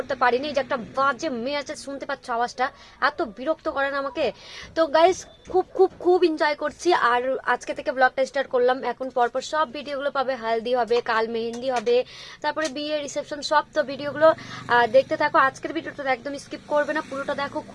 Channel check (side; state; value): both; identical; correlation 1.00